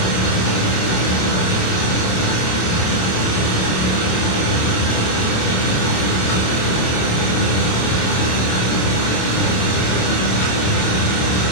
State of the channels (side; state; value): right; late; 27 ms